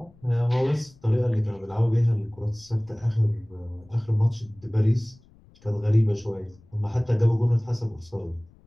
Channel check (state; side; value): noise; left; rumble, 28 dB below the sound